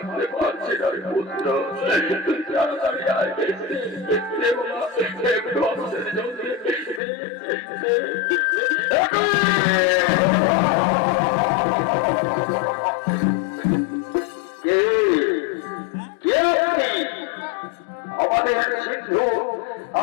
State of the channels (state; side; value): drops out; right; at 7.0 s